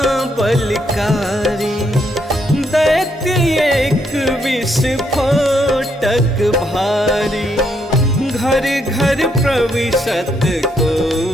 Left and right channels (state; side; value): normal; both; correlation 0.75